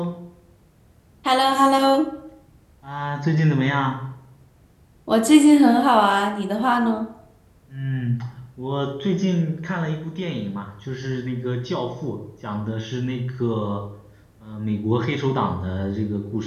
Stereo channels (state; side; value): identical; both; correlation 1.00